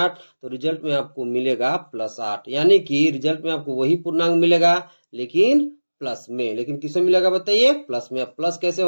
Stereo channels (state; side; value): inverted; both; correlation -1.00